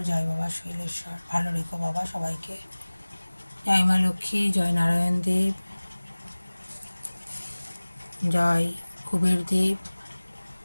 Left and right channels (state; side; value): inverted; both; correlation -1.00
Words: জয় বাবা শৈলেশ্বর। ভালো রেখো বাবা সবাইকে। জয় মা লক্ষ্মী, জয় নারায়ণ দেব, জয় কুবের দেব,